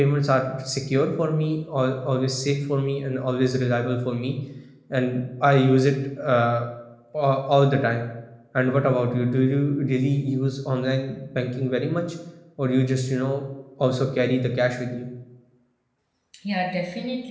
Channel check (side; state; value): both; identical; correlation 1.00